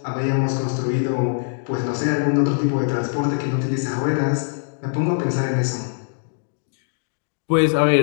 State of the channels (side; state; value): right; silent; digital silence